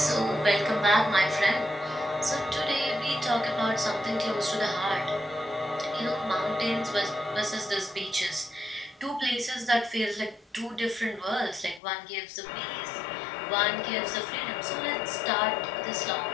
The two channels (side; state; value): right; drops out; at 11.8 s